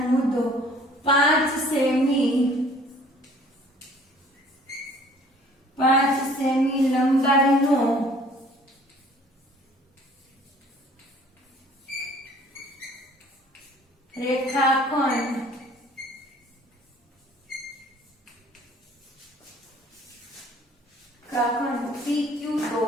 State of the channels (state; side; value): normal; both; correlation 0.54